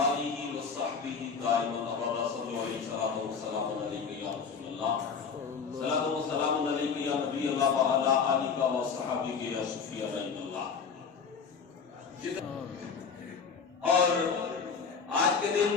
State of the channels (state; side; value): quieter; right; 5.9 dB